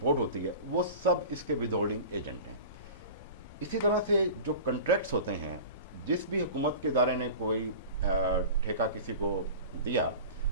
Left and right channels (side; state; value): both; inverted; correlation -0.36